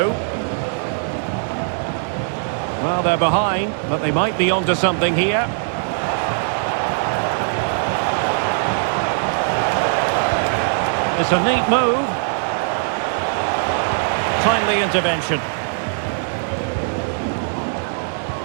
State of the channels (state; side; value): silent; left; digital silence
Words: Well, they're behind, but they might be onto something here. It's a neat move. Timely intervention.